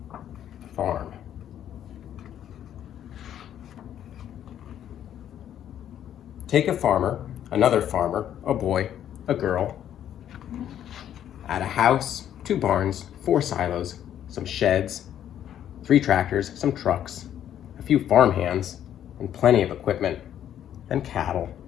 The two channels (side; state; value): right; quieter; 10.5 dB